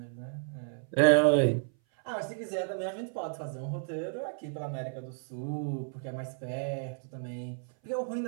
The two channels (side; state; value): left; silent; 56 dB below the other